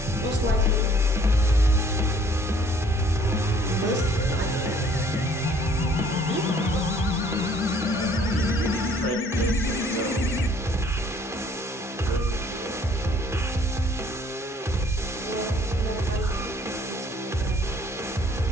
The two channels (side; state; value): both; normal; correlation 0.58